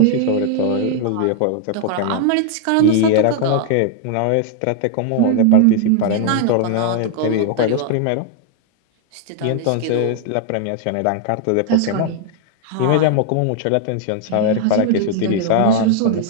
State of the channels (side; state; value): both; different; correlation 0.00